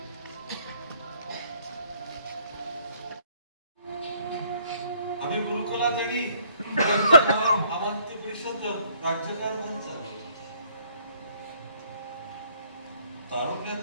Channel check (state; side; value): inverted; both; correlation -0.64